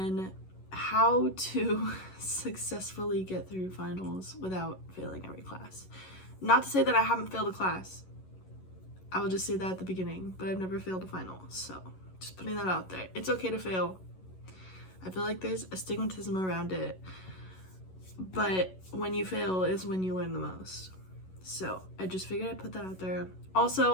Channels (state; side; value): late; right; 11 ms